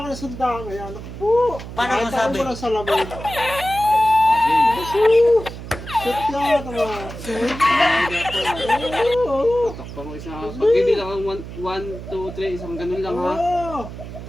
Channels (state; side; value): noise; right; hum, 11 dB below the sound